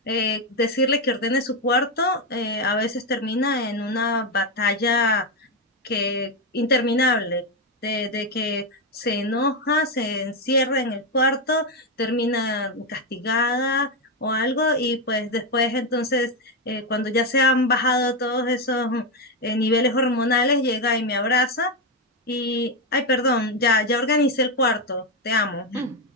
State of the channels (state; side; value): normal; both; correlation 0.07